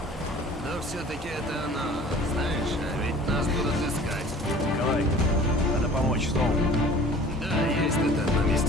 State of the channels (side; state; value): both; normal; correlation 0.47